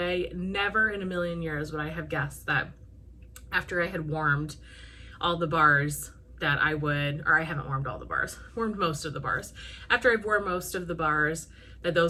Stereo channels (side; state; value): both; identical; correlation 1.00